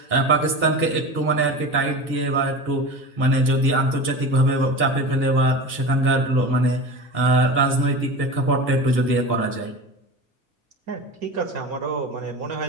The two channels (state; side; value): normal; both; correlation 0.30